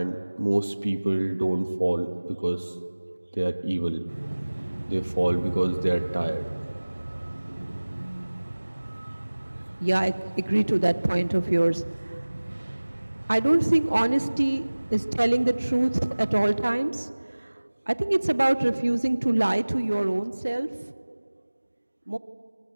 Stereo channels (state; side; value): inverted; both; correlation -1.00